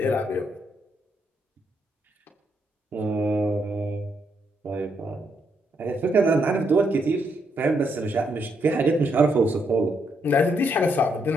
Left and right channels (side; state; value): both; normal; correlation 0.76